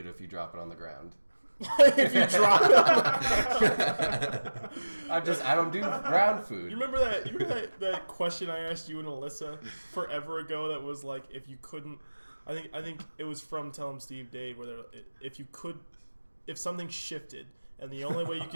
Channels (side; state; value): both; inverted; correlation -1.00